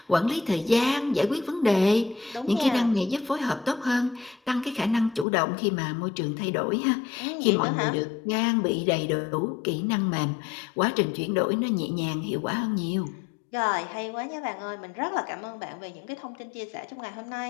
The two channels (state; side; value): drops out; right; at 5.2 s